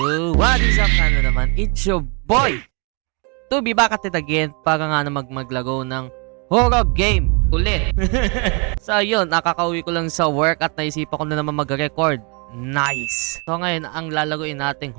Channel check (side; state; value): left; quieter; 33.8 dB